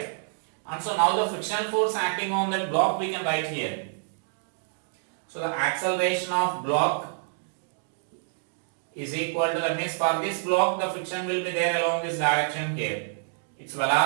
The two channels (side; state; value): left; silent; digital silence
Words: And so now the frictional force acting on that block we can write here. So the acceleration of block is equal to, that means for this block the friction will be there along this direction here. Its